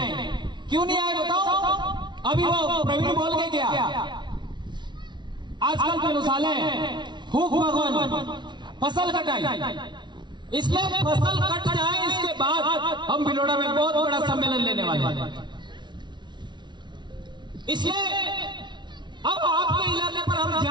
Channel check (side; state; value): left; late; 0.22 ms